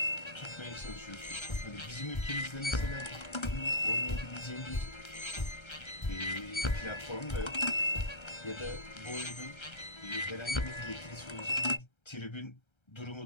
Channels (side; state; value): right; late; 1.3 ms